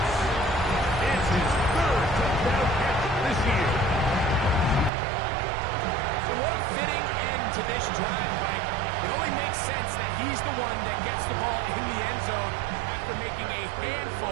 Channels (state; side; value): drops out; left; at 4.9 s